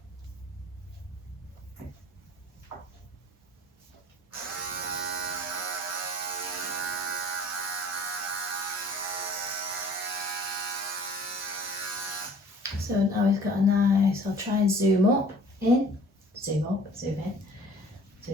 So now he's got a nice, I'll try and zoom in. So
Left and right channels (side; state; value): both; normal; correlation 0.50